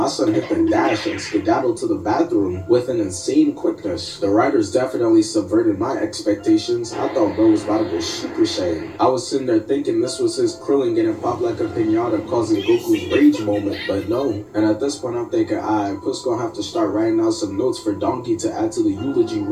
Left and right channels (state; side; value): identical; both; correlation 1.00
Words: son hit the dash and skedaddled to the bathroom with an insane quickness. The writers definitely subverted my expectations. I thought bro was about to go Super Saiyan. I was sitting there thinking this was his Krillin getting popped like a pinata causing Goku's rage moment, but no. And at this point I'm thinking, Puss gonna have to start writing out some notes for Donkey to add to the eulogy